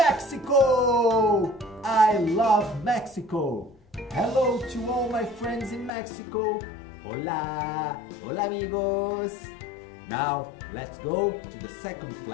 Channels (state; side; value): drops out; right; at 5.9 s